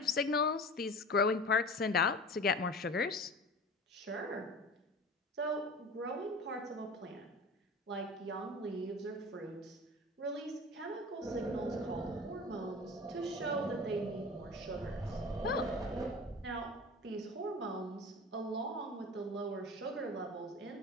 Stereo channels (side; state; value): both; normal; correlation 0.36